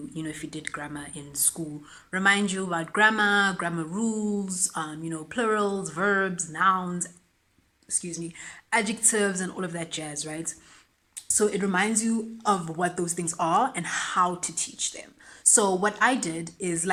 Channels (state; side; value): identical; both; correlation 1.00